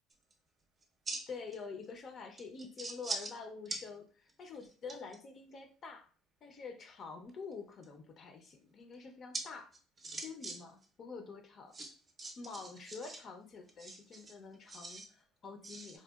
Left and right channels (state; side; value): normal; both; correlation 0.69